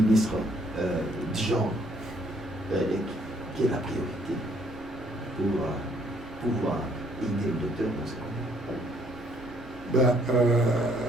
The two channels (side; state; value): both; normal; correlation 0.65